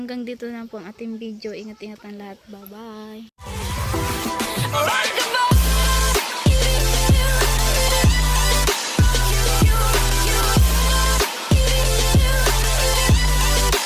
dito na po ang ating video. Ingat-ingat ang lahat. Bye-bye!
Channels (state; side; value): identical; both; correlation 1.00